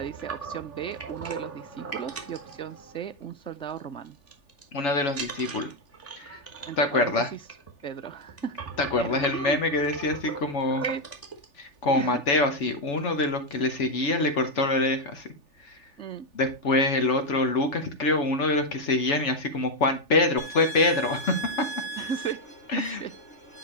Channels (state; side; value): late; right; 3.4 ms